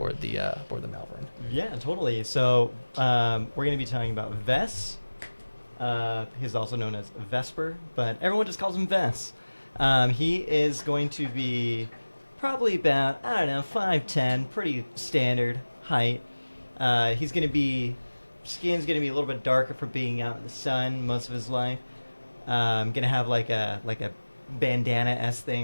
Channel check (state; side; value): inverted; both; correlation -1.00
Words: the Malvern. Yeah, totally. So we're going to be talking about Vess. He's also known as Vesper, but everyone just calls him Vess. He is going to be probably about, 5'10", pretty standard height. He's going to be, skin's going to be a little bit darker for being out in the sun most of his life. Going to have like a bandana-esque